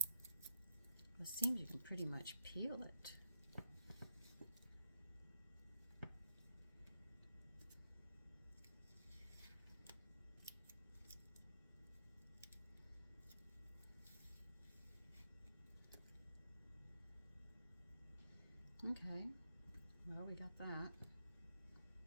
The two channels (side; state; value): both; inverted; correlation -0.78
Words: It seems you can pretty much peel it. Okay, well, we got that.